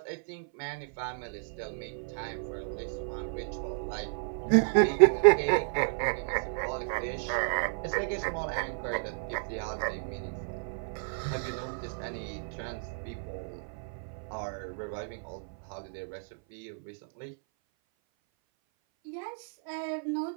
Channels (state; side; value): silent; left; 56 dB below the other